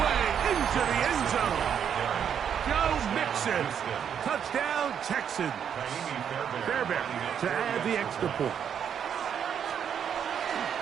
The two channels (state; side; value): quieter; left; 8.2 dB